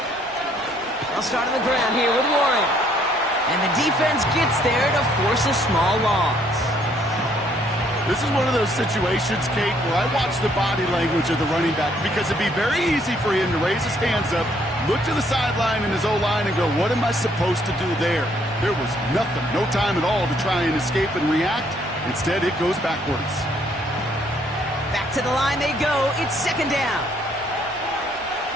I'll start on the ground here with Warren. And the defense gets there to force a small loss. This is one of those situations, Kate, where I watch the body language of the running back because it'd be very easy for him to raise his hands up, look to the sideline in his O-line and go, what am I supposed to do there? There was nothing, no time at all to try and escape and react. Instead, it goes backwards. Back to the line they go. It's 2nd down.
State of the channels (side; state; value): both; normal; correlation 0.66